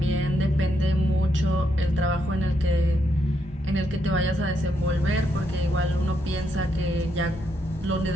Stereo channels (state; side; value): normal; both; correlation 0.78